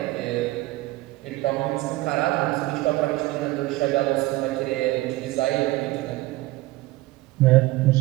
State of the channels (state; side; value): quieter; left; 18.8 dB